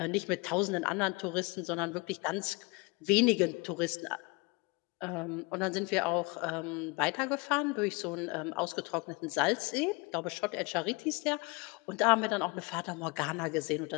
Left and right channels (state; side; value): quieter; right; 27.9 dB